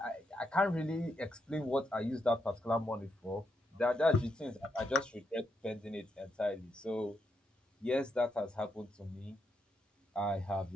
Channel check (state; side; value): normal; both; correlation 0.81